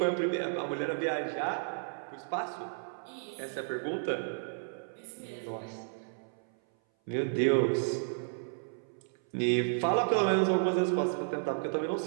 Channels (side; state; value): left; silent; 56 dB below the other